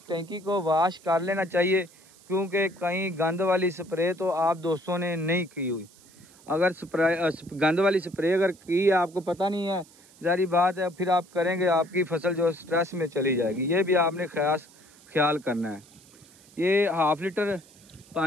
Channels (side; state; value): right; noise; hiss, 26 dB below the sound